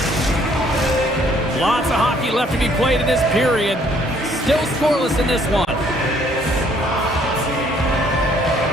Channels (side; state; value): both; normal; correlation 0.63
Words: Lots of hockey left to be played in this period. Still scoreless in this one.